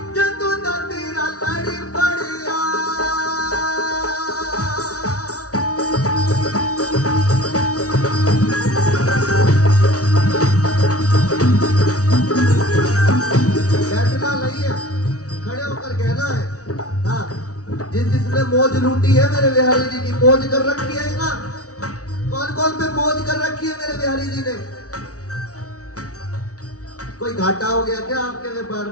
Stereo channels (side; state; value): right; late; 0.67 ms